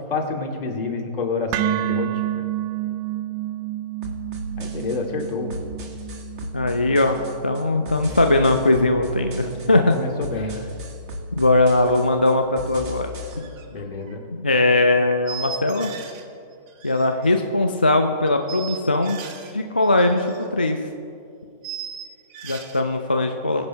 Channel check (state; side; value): inverted; both; correlation -0.64